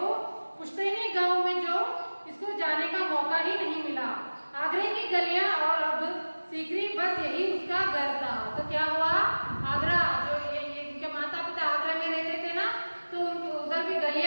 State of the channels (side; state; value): both; inverted; correlation -1.00